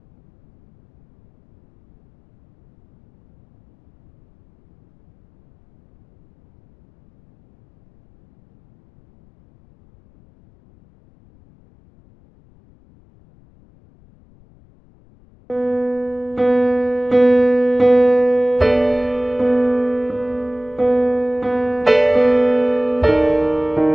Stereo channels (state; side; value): noise; left; rumble, 30 dB below the sound